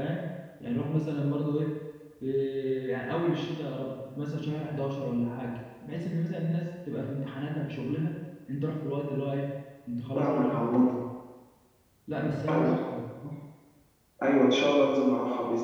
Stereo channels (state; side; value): identical; both; correlation 1.00